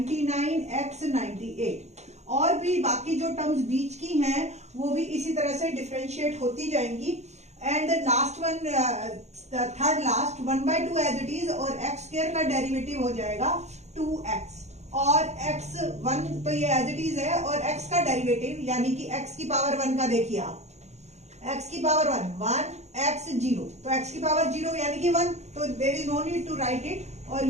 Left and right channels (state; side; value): late; left; 0.32 ms